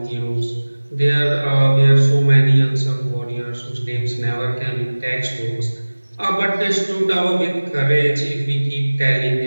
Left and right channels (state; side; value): inverted; both; correlation -1.00